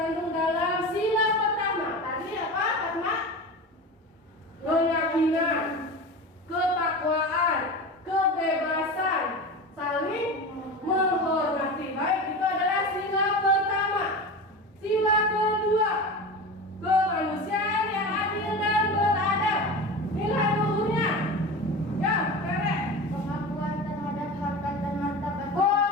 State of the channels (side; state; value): both; normal; correlation 0.29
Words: dalam sila pertama. Tadi apa, Fatma? Keyakinan, ketakwaan, kebebasan, saling menghormati. Baik, itu adalah sila pertama. Sila kedua, kemanusiaan yang adil dan beradab. Nilai luhurnya, ya, Tere. Pengakuan terhadap harkat dan martabat.